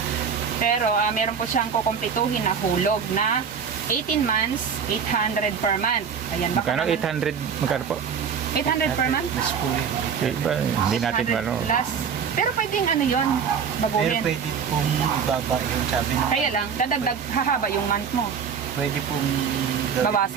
Pero meron po siyang kukumpletuhin na hulog na 18 months, 800 per month. Ayan, baka Magkano? naman- 800? Magkano po? 800 per month? Mas po yun. Iba, hindi natin 800 ano. plus. Pero pwedeng ano yun, Pero baguhin. pwede pong ibaba yung sabi ng Kaya lang, dadagdag, hahaba yung month mo. pwede pong gawin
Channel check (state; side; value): quieter; left; 6.8 dB